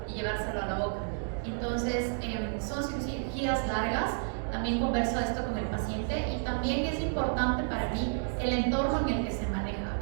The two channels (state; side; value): silent; left; 57 dB below the other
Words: y llevárselo a la boca. Entonces, son cirugías largas. También converso esto con el paciente, y también es importante para mí el entorno en el que se maneja